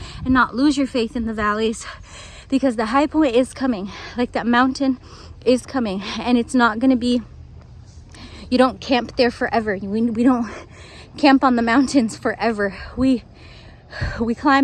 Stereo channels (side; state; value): both; identical; correlation 1.00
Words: and not lose your faith in the valleys? Because the high point is coming, like that mountain is coming, and it's not going to be, you don't camp there forever. We don't camp on the mountains forever. We